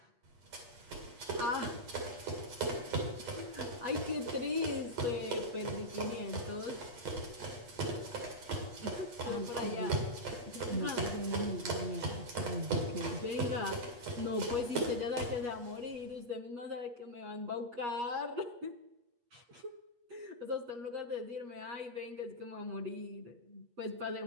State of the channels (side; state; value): left; late; 8.3 ms